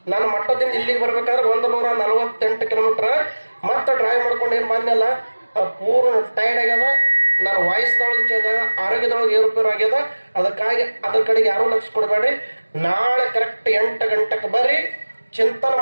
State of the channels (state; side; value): inverted; both; correlation -1.00